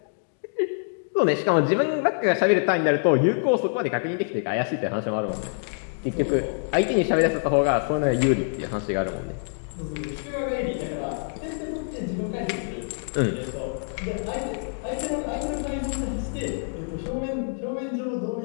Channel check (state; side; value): silent; right; digital silence